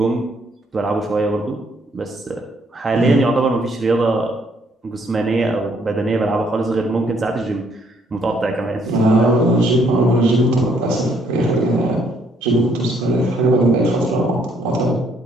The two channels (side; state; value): both; normal; correlation 0.68